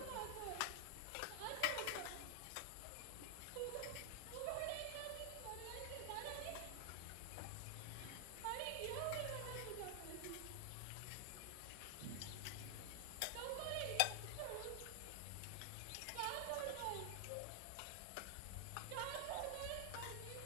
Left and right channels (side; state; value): both; different; correlation 0.00